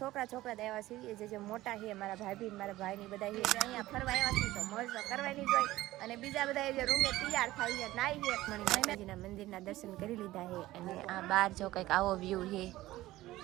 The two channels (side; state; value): left; quieter; 16.6 dB